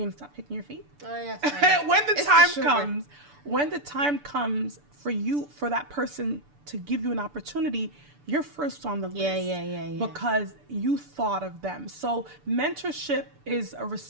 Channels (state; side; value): late; left; 6.9 ms